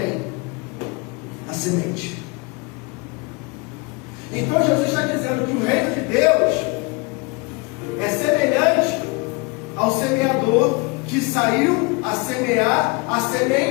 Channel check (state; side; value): quieter; right; 28.0 dB